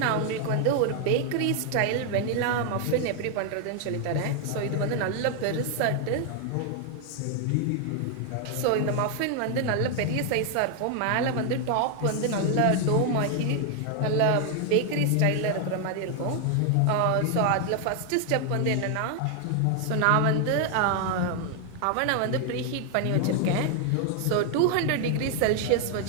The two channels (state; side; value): different; both; correlation 0.00